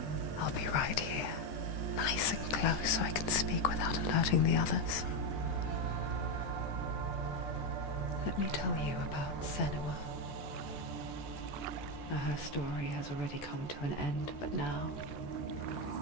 I'll be right here, nice and close so I can speak without alerting the others. Let me tell you about Senua. Her story has already come to an end, but now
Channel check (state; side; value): late; right; 13 ms